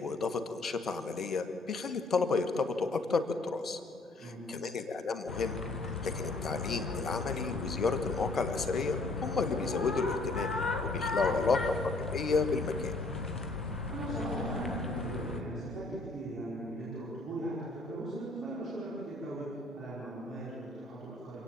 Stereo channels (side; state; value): right; quieter; 3.1 dB